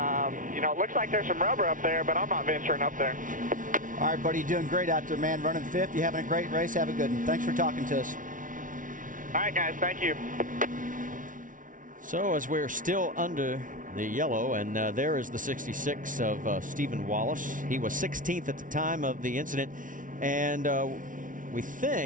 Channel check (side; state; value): left; late; 0.38 ms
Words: you know, it looks like there's some rubber up there, but I'm not venturing up there. All right, buddy, you're doing great out there, man. Running fifth. You're having a great race. Have a good one. Thanks for talking to us. All right, guys. Thank you. So as we're still under the yellow, and there is the 66 of Stephen Wallace. He was 16th at the time of the incident, and we